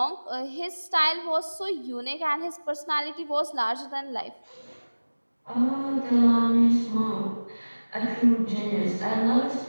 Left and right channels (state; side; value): inverted; both; correlation -1.00